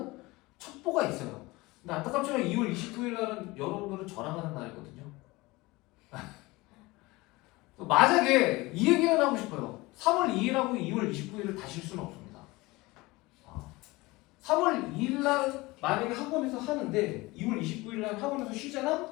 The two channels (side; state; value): right; quieter; 21.8 dB